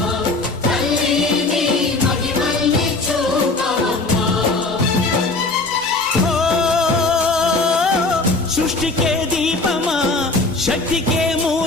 సృష్టికే దీపమా శక్తికే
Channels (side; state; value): right; quieter; 3.4 dB